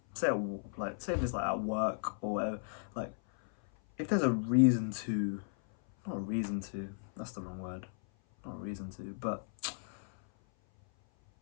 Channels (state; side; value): silent; right; 54 dB below the other